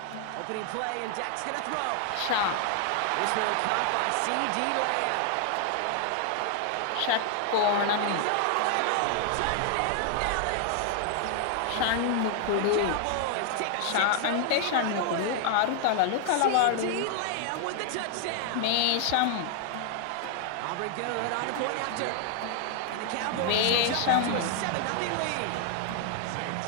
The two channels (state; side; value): different; both; correlation 0.00